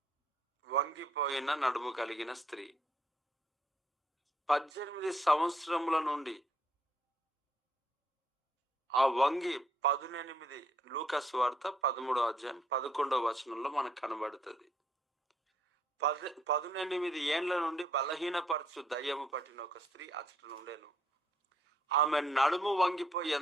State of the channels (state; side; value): normal; both; correlation 0.69